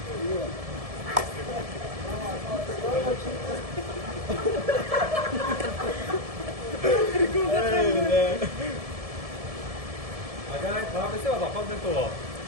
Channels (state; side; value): late; left; 1.7 ms